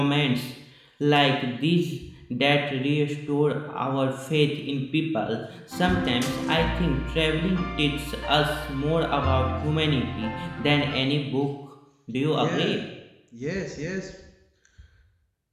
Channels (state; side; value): identical; both; correlation 1.00